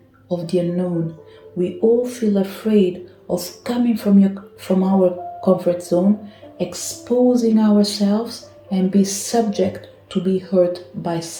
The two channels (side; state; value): both; identical; correlation 1.00